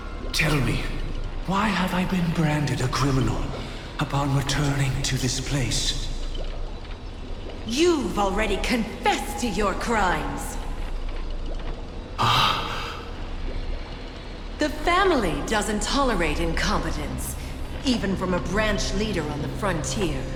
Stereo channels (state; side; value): identical; both; correlation 1.00